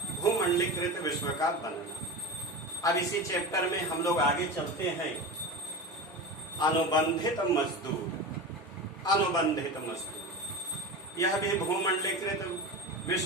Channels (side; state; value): both; normal; correlation 0.27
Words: भूमंडलीकृत विश्व का बनना। अब इसी चैप्टर में हम लोग आगे चलते हैं। अनुबंधित मजदूर, यह भी भूमंडलीकृत